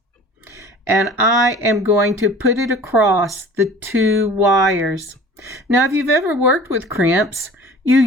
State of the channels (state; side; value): normal; both; correlation 0.44